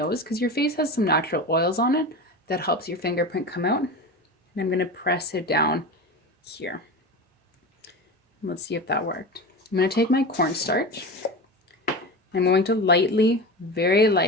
because your face has some natural oils on it that helps your fingerprint come out. And I'm going to press it down here. Let's see if that worked. I'm going to take my cornstarch. I'm going to lightly, very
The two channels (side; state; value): both; normal; correlation 0.27